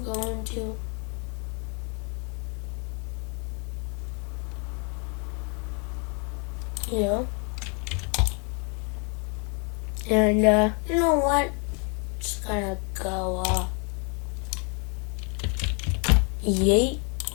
to and you know what? Just gonna go yeet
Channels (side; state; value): right; quieter; 36.4 dB